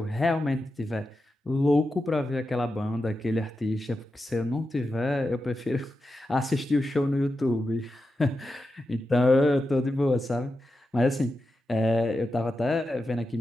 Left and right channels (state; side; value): normal; both; correlation 0.90